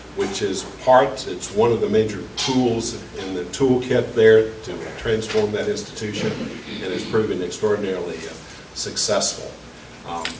which is it's one of the major tools in the toolkit there to transform that institution, and has proven extraordinarily successful.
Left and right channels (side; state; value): both; identical; correlation 1.00